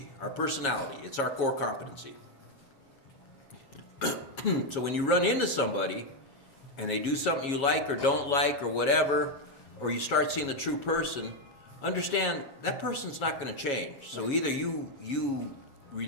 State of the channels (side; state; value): right; late; 7.3 ms